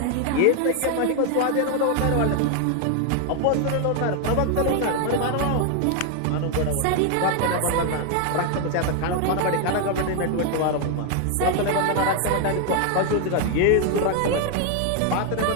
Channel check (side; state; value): both; different; correlation 0.01